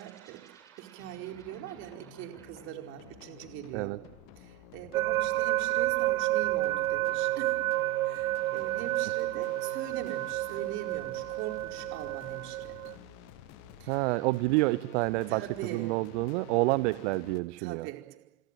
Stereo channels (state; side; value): quieter; left; 16.1 dB